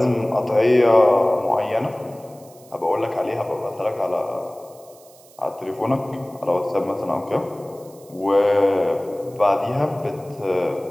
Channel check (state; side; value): noise; right; hiss, 26 dB below the sound